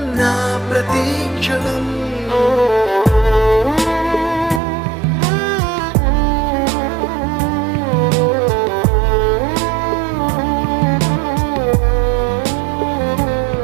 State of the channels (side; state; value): left; drops out; at 4.6 s